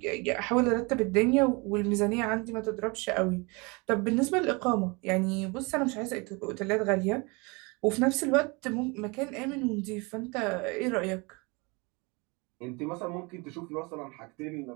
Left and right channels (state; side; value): quieter; left; 28.3 dB